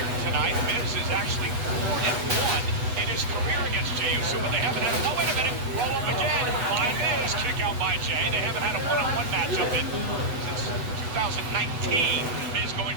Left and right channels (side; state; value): left; late; 8.1 ms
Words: tonight. Miz is actually 4-1 in his career against Jey Uso, but they haven't had oh, wait a minute, roll up again by Miz, kick out by Jey. They haven't had a one-on-one matchup since 2019. Miz going